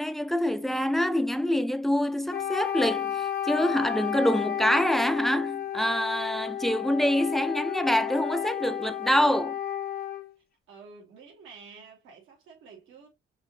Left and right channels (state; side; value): normal; both; correlation 0.84